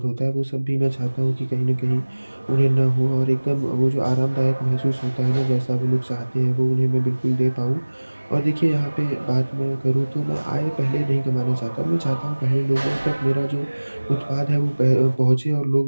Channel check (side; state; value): both; inverted; correlation -1.00